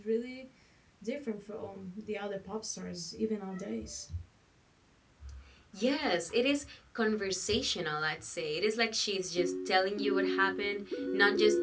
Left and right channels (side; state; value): both; identical; correlation 1.00